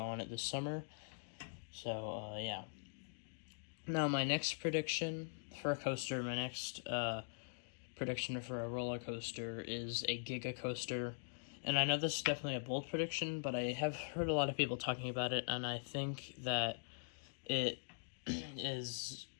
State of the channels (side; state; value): right; silent; digital silence